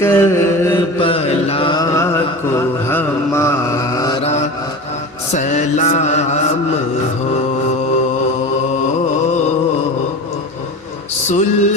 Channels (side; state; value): both; normal; correlation 0.30